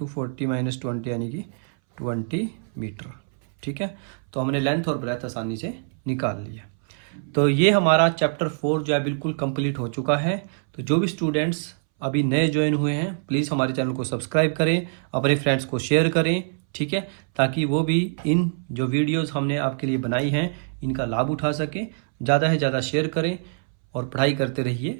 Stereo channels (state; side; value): silent; left; 62 dB below the other